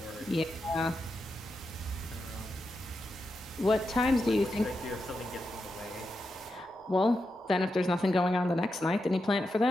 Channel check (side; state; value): both; normal; correlation 0.87